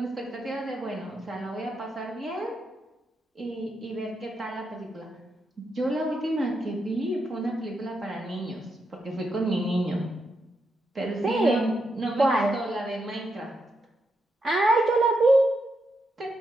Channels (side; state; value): both; normal; correlation 0.83